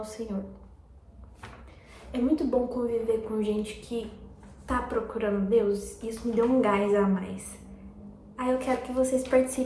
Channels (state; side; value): identical; both; correlation 1.00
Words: Senhor. É muito bom conviver com gente que tá procurando Deus, isso me deu um gás a mais. Aí eu quero que vocês